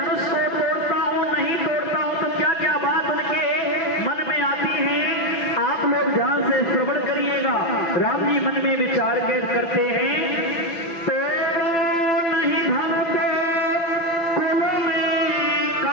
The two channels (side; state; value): right; late; 6.0 ms